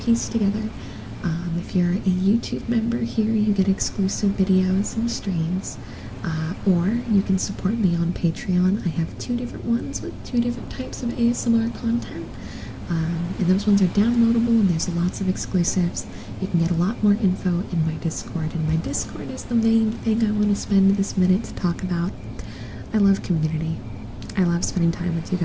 together. If you're a YouTube member here, you get exclusive videos and streams. Or you can support me on Patreon. I have 2 different ones with 2 different types of ASMR content. And those ones are downloadable, and there's lots of exclusives. You can get a lot more info in my Discord, and my Discord is the main thing I want to spend this minute to talk about. I love community. I love spending time with you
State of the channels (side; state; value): both; identical; correlation 1.00